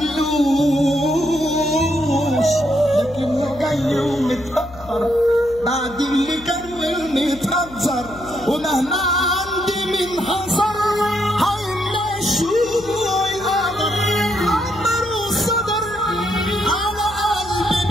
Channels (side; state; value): left; noise; hum, 19 dB below the sound